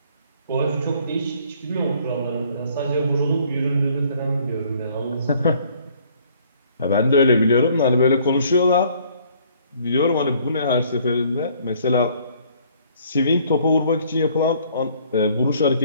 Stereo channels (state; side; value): inverted; both; correlation -0.60